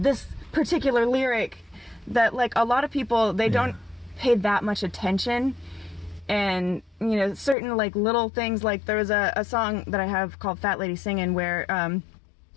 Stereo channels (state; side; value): drops out; right; at 7.6 s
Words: particular lyric that like a lot of people, they don't pay that much attention. And you know, certain like little things, like there was a song that I have called Fat Lady Singin' where